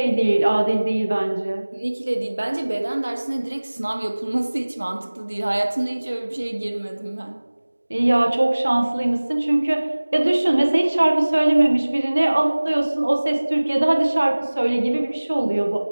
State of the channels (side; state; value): both; inverted; correlation -1.00